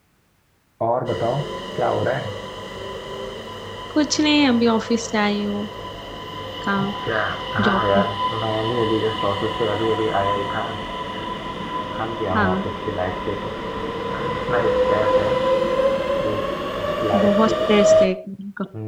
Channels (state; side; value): identical; both; correlation 1.00